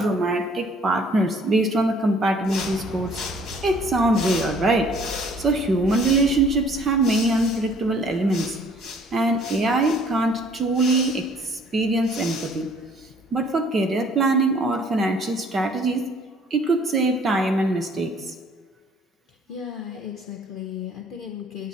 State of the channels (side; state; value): both; normal; correlation 0.57